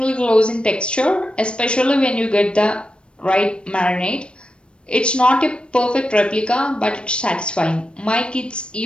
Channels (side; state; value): right; late; 0.057 ms